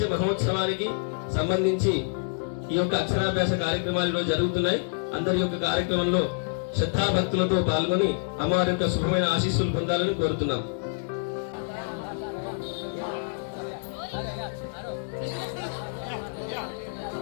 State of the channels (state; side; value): silent; right; digital silence